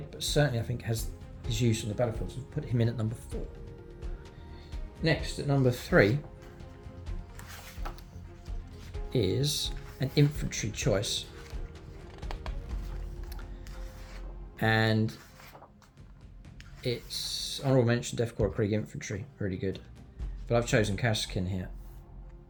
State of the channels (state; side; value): identical; both; correlation 1.00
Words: but certainly I think has his use on the battlefield. So put him in at number 4. Next, at number 3 is an infantry choice. And it's Honourable Mention, Korps of Krieg Infantry. Really good. But I've chosen Cassin here.